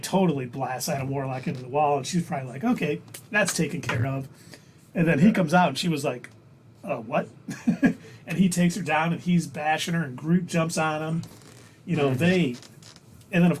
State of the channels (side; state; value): both; identical; correlation 1.00